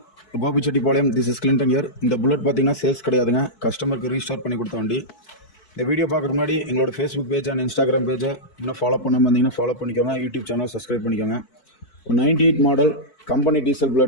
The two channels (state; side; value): late; right; 4.6 ms